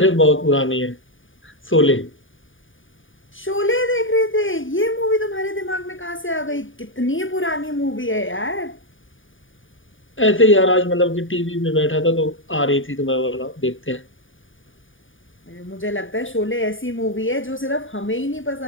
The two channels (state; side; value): late; right; 0.57 ms